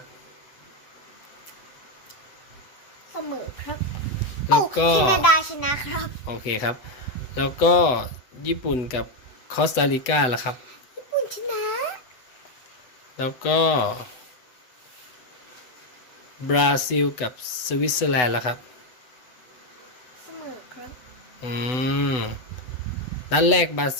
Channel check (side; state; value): right; late; 8.0 ms